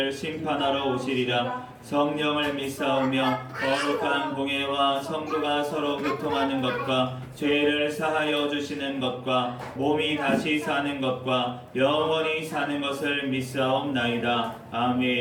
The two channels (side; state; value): both; identical; correlation 1.00